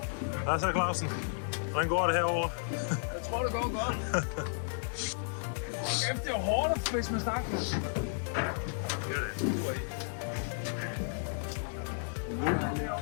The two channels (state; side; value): silent; right; digital silence